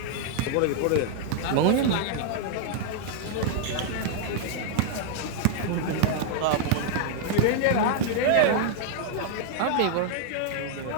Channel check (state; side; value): different; both; correlation 0.00